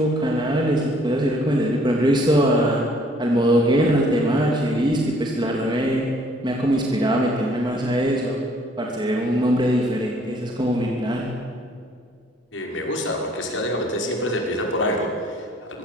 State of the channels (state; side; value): normal; both; correlation 0.61